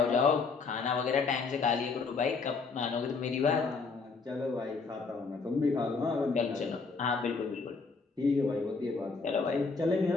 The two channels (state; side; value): quieter; right; 4.6 dB